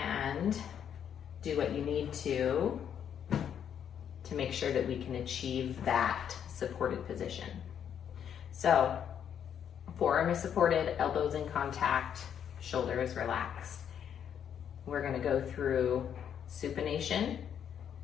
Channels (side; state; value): right; quieter; 8.7 dB